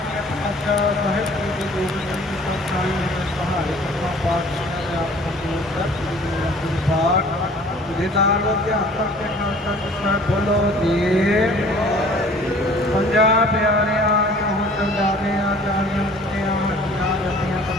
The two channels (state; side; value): normal; both; correlation 0.51